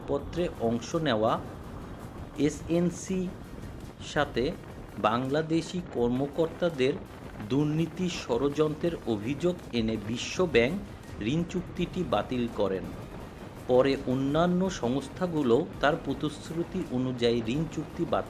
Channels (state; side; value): identical; both; correlation 1.00